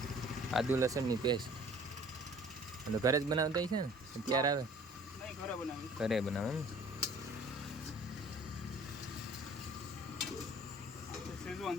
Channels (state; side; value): normal; both; correlation 0.51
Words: આદુ લસણની પેસ્ટ. તો ઘરે જ બનાવતા છે ને? અત્યારે આવે ઘરે બનાવે ને?